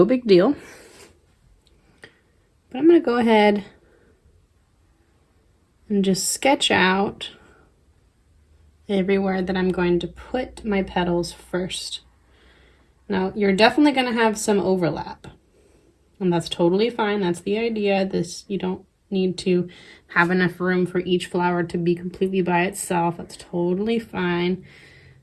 big deal. But I'm going to go ahead and just sketch out everywhere that I'm going to put my petals first. Now, you're definitely going to have some overlap, and that's totally fine. That's the idea. You don't need to have enough room for each flower to be completely by itself. That's totally fine.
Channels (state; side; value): identical; both; correlation 1.00